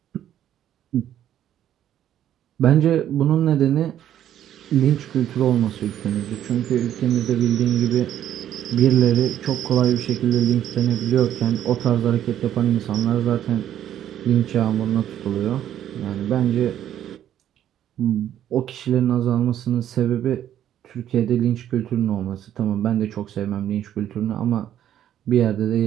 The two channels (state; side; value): quieter; left; 11.0 dB